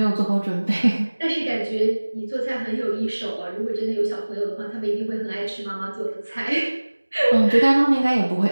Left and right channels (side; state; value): both; inverted; correlation -1.00